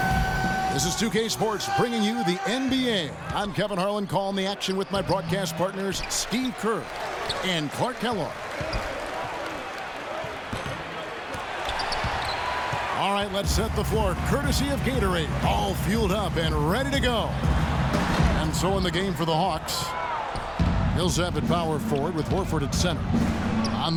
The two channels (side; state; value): both; identical; correlation 1.00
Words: This is 2K Sports bringing you the NBA. I'm Kevin Harlan calling the action with my broadcast partners Steve Kerr and Clark Kellogg. All right, let's set the floor courtesy of Gatorade. All fueled up and ready to go. And so in the game for the Hawks, Millsap at power forward with Horford at center. On